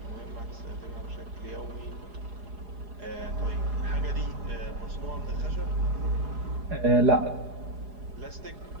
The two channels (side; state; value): left; late; 4.8 ms